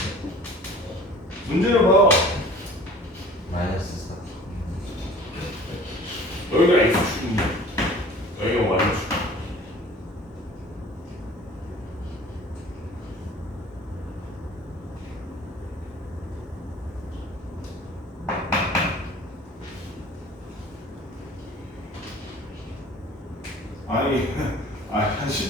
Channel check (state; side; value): normal; both; correlation 0.46